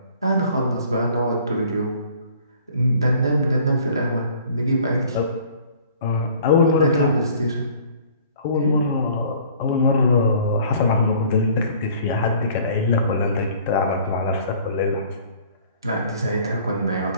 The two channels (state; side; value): inverted; both; correlation -0.53